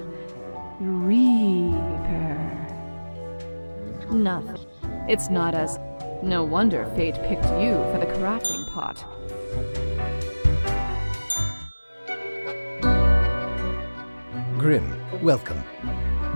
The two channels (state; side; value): inverted; both; correlation -1.00